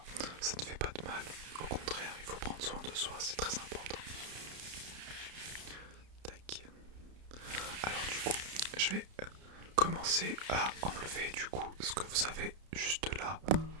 ne fait pas de mal. Au contraire, il faut prendre soin de soi, c'est très important. Tac. Alors du coup, je vais commencer à enlever du coup ce que vous avez juste là.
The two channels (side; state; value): left; late; 31 ms